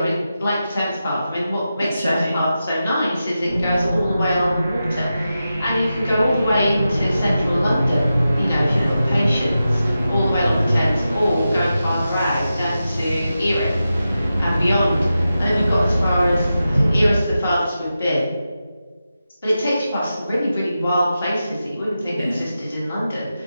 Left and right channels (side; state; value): both; inverted; correlation -0.91